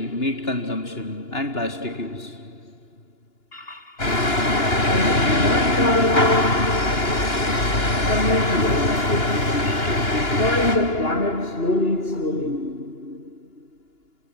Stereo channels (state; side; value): late; right; 2.9 ms